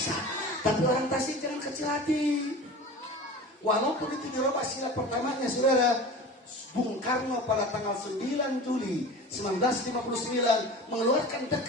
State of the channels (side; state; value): both; normal; correlation 0.35